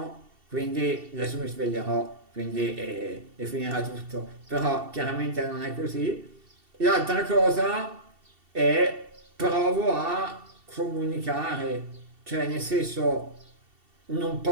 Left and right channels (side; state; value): left; late; 2.7 ms